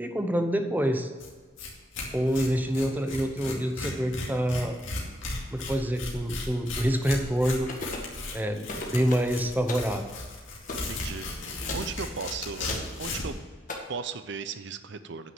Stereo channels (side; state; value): both; normal; correlation 0.80